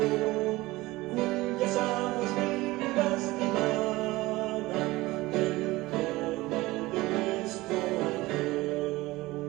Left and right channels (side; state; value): left; quieter; 19.7 dB